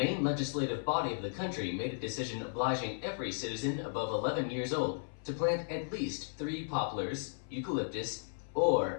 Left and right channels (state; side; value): silent; right; 54 dB below the other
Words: legislative body of the country made a decision obliging every citizen above 11 years old to plant at least 3 poplars, eucalyptus,